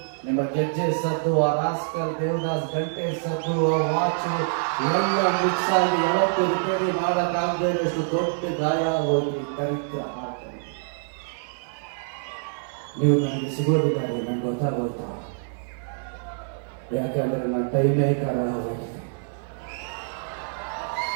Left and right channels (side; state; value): left; silent; 61 dB below the other